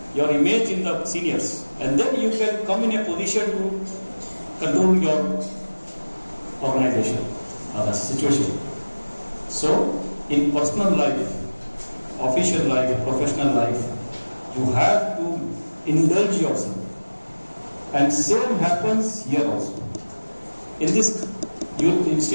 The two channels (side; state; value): both; inverted; correlation -1.00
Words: Your image in the seniors. And then you can come in a position to control your organization or the situation. So, in personal life, official life, professional life, you have to indulge yourself. And same happens here also. In this